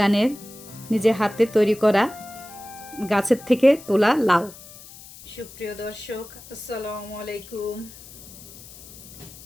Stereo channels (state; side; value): noise; left; hiss, 18 dB below the sound